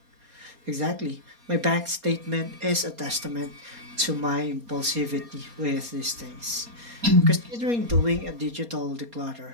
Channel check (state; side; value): late; left; 4.2 ms